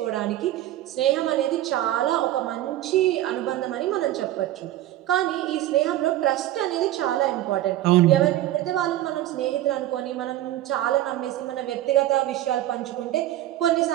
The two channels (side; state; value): left; quieter; 14.0 dB